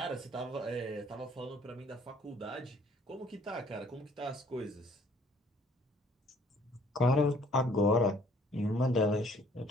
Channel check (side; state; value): both; normal; correlation 0.59